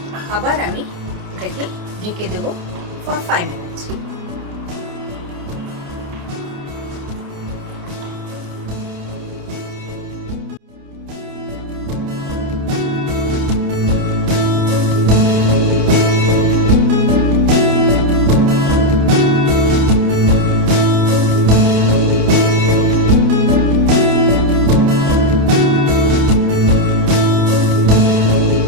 আবার আমি এটাকে ঢেকে দেবো ফর 5 মিনিটস।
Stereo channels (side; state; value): left; late; 28 ms